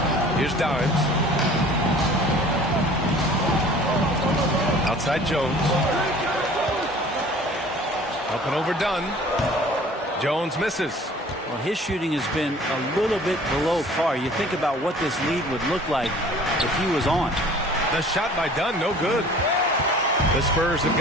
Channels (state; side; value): normal; both; correlation 0.48